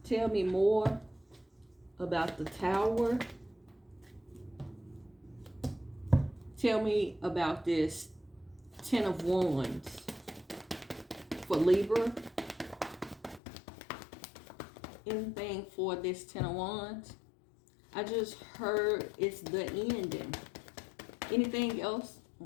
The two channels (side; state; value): right; drops out; at 13.4 s